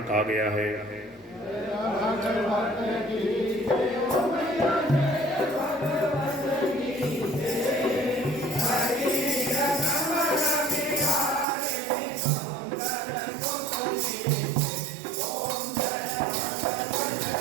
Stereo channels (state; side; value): drops out; left; at 11.5 s